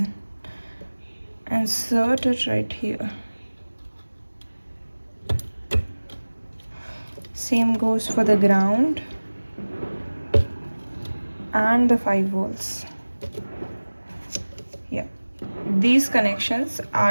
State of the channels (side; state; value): both; inverted; correlation -1.00